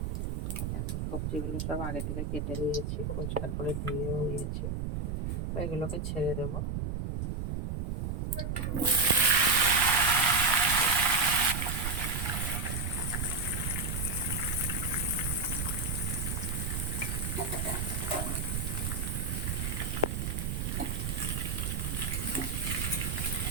দেখো সবজিগুলো সব আগে থেকে কেটে নিয়েছি, পরিষ্কার করে ধুয়েও নিয়েছি। এগুলোকে ছেড়ে দেবো।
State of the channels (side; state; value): right; noise; rumble, 1 dB below the sound